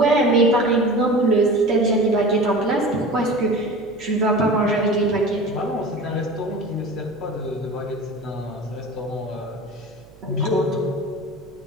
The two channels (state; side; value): noise; right; hum, 25 dB below the sound